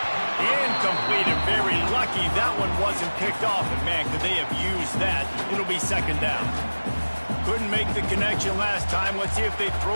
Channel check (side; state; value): both; inverted; correlation -1.00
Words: Incomplete, and very lucky that one wasn't picked off. And man, could they have used that? It'll be second down. Couldn't make the connection last time. Let's see if they